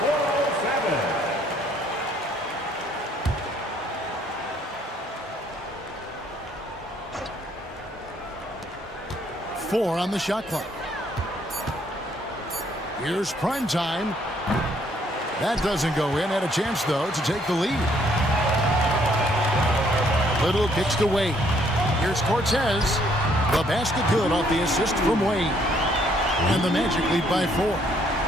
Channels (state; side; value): normal; both; correlation 0.66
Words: 407. 4 on the shot clock. Here's prime time. That doesn't go in. Had a chance, though, to take the lead. Little kicks to Wade. Here's Cortez. The basket good off the assist from Wade. And the Magic lead by 4.